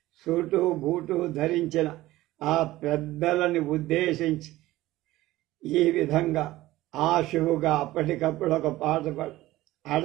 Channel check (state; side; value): quieter; left; 16.8 dB